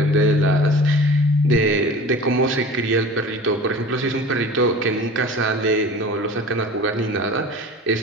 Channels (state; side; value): normal; both; correlation 0.39